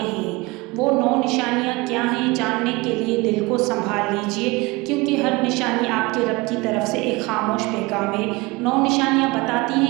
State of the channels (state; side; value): quieter; left; 23.5 dB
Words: وہ 9 نشانیاں کیا ہیں؟ جاننے کے لیے دل کو سنبھال لیجیے، کیونکہ ہر نشانی آپ کے رب کی طرف سے ایک خاموش پیغام ہے۔ 9 نشانیاں بتاتی